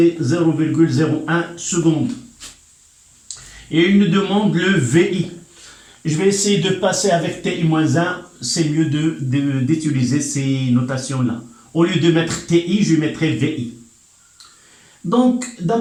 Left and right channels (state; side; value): identical; both; correlation 1.00